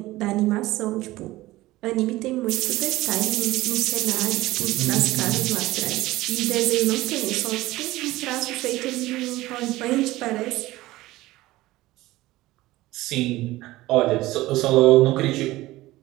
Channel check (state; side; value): quieter; left; 17.9 dB